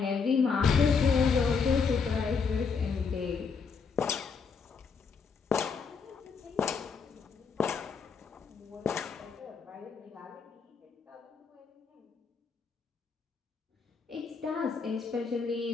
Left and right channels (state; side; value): quieter; right; 5.5 dB